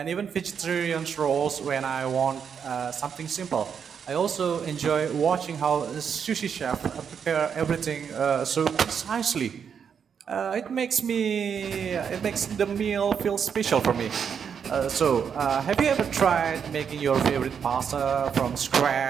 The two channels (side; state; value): left; quieter; 7.2 dB